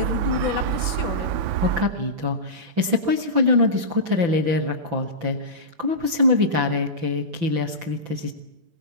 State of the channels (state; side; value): late; left; 5.9 ms